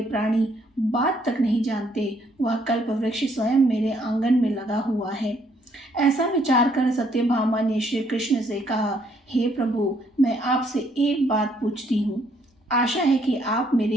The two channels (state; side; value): normal; both; correlation 0.69